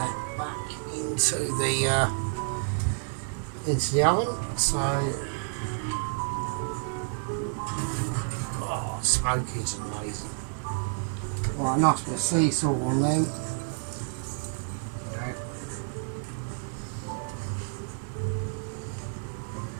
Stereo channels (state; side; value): silent; left; 58 dB below the other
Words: back into the oven. So, oh, smoky's amazing. Right, nice bit of sea salt on them. Okay.